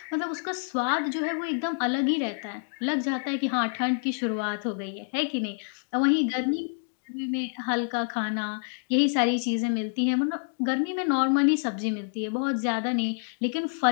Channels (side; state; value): right; silent; 60 dB below the other